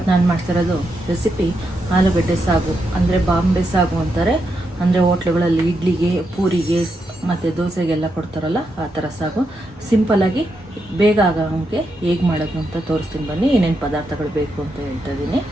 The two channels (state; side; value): normal; both; correlation 0.83